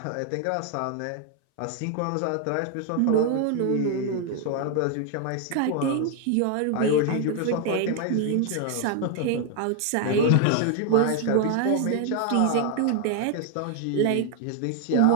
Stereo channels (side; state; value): both; different; correlation 0.00